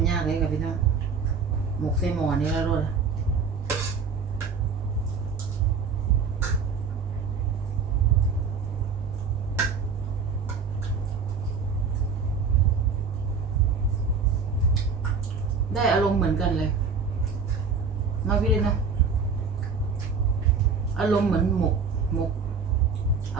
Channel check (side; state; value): left; quieter; 5.4 dB